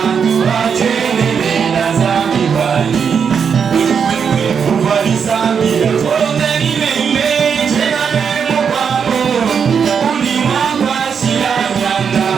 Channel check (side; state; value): left; quieter; 6.7 dB